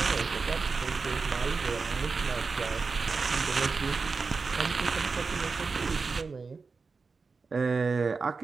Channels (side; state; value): left; quieter; 4.5 dB